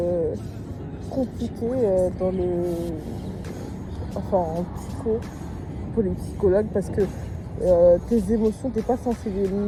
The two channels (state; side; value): identical; both; correlation 1.00